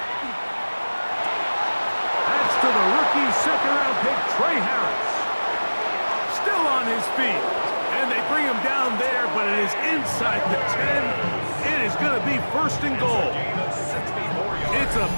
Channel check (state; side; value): inverted; both; correlation -1.00